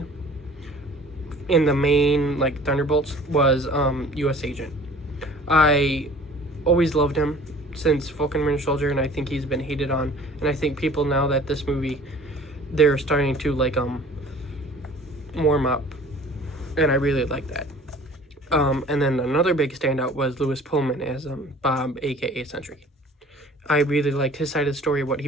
in the main like Thunderbolts was US Agent. I always loved him since Falcon Winter Soldier, and I think he's been hated on, and I think people now that this movie, they're starting to like warm up, and I really like that. And then another big standout was Lewis Pullman as Bob, aka Sentry. I really liked his side of the story, what he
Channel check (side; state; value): both; normal; correlation 0.48